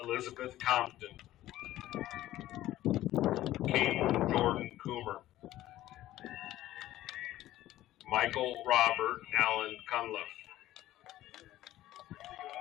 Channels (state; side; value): quieter; right; 14.6 dB